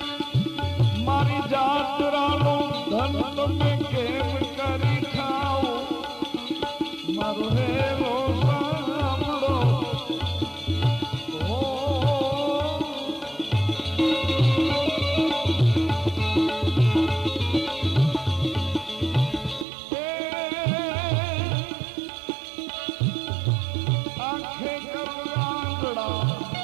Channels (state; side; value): drops out; left; at 19.7 s